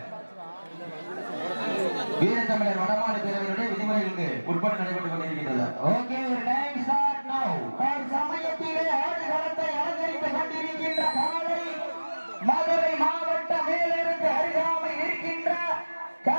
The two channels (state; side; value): inverted; both; correlation -1.00